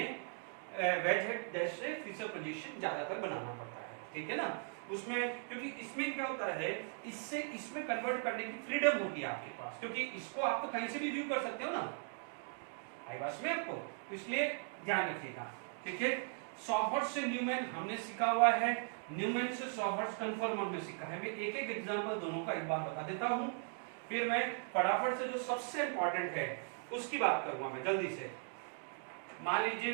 वेज हेड डैश से फीचर प्रोजेक्शन ज्यादातर बनाना पड़ता है, ठीक है ना। उसमें क्योंकि इसमें क्या होता है, इससे इसमें कन्वर्ट करने की फ्रीडम होती है आपके पास, क्योंकि इसको आप तो कहीं से भी व्यू कर सकते हो ना, आई बात में आपको, तो इसलिए ध्यान रखिएगा, ठीक है। सॉहर्ट्ज से न्यूमैन हमने सीखा हुआ है, न्यूमैन से सॉहर्ट्ज कन्फर्मर में सीखा है। मैं एक एक एग्जांपल दोनों का एक बार बता देता हूं, फिर मैं फटाफट से जो सबसे इंपॉर्टेंट है उसकी बात करूंगा मैं जल्दी से। मान लीजिए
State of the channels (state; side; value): silent; left; 52 dB below the other